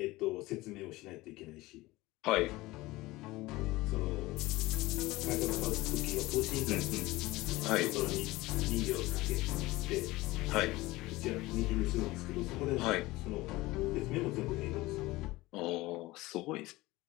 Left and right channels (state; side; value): quieter; right; 19.7 dB